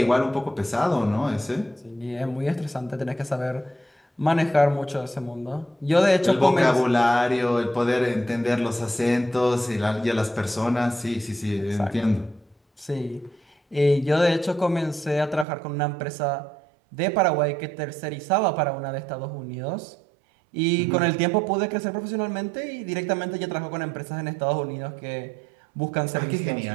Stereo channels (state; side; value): drops out; left; at 15.5 s